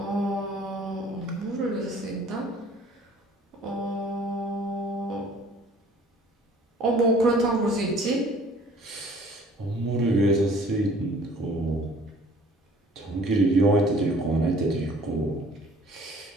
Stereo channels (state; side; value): normal; both; correlation 0.53